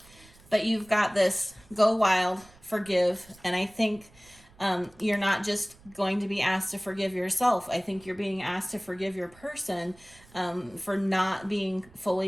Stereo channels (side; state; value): right; noise; rumble, 26 dB below the sound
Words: But you've got this go wild, forgive, and I think you're not just going to be asked to forgive yourself. I think you're being asked to forgive your person for not being